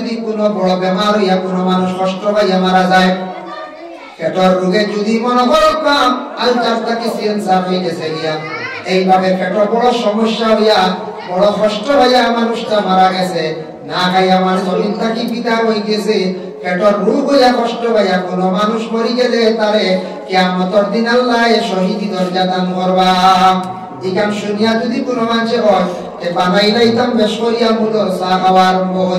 কোনো বড় বেমার হইয়া কোনো মানুষ কষ্ট পাইয়া মারা যায়, পেটের রোগে যদি মনে করো কাম আলচারটাকে সেন্সার হয়ে গেছে গিয়া, এইভাবে পেটের বড় সমস্যা হইয়া বড় কষ্ট হইয়া মানুষটা মারা গেছে, না খাইয়া আমার জমিন থাকি পিতা হয়ে গেছে, পেটের রোগ হইয়া কষ্ট হইয়া কোনো মানুষ মরি গেলে তারে কিয়ামতের দিন আল্লাহ শহীদি দরজা দান করবা। এখান শুনিয়া যদি কোনো মানুষে হয় বানাই লাইতাম বেশ করিয়া মুদর চা খাওয়া আরম্ভ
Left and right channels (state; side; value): identical; both; correlation 1.00